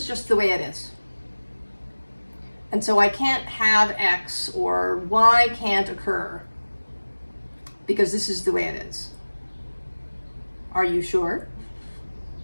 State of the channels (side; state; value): both; inverted; correlation -1.00